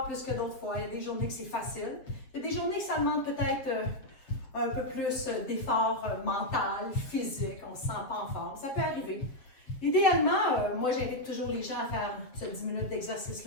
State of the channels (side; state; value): right; late; 7.5 ms